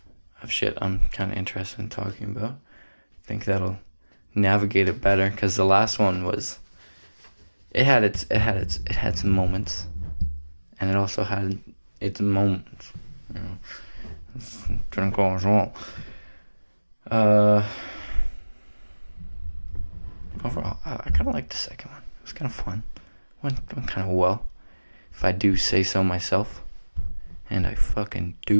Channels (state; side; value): inverted; both; correlation -1.00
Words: of shit I'm kind of interested in talking about. I think that'll navigate it better, because the last one was, it had some moments, and it also had its moments. Didn't go as well. Overall, I kind of liked the second one. It was kind of fun. Went kind of well, if I do say so myself, and I fucking